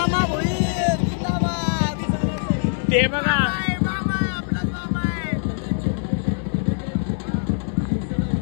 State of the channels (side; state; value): right; silent; 61 dB below the other